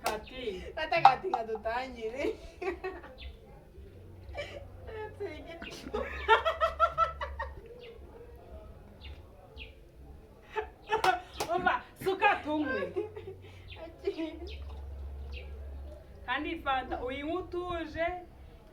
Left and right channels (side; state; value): both; identical; correlation 1.00